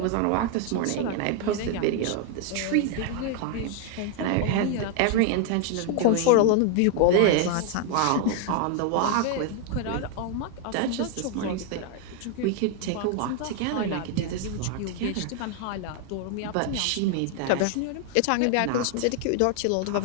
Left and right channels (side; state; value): both; different; correlation 0.01